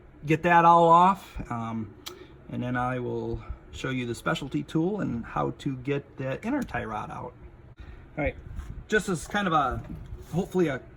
that all off, and then I will show you the specialty tool and how to get that inner tie rod out. All right, just as kind of a, hopefully a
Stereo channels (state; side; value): identical; both; correlation 1.00